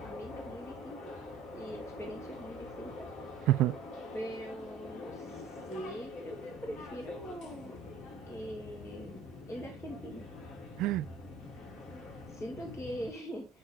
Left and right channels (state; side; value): quieter; left; 5.0 dB